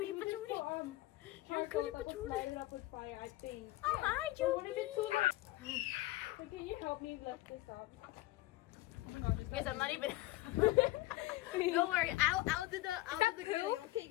patootie. You're a cutie patootie. Light it up with fire, I think. Oh, hi, I want to be too Julie! much. So can you help me lift this up? Guys, I'm not even. Don't worry, I'll do the glue. Okay,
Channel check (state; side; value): quieter; right; 17.9 dB